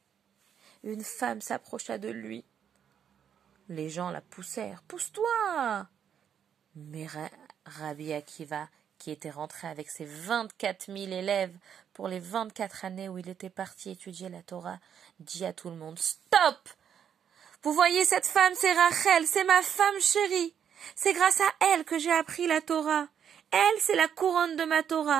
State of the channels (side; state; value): left; quieter; 8.5 dB